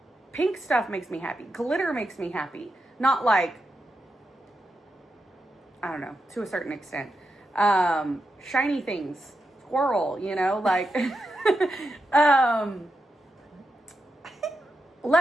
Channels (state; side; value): normal; both; correlation 0.87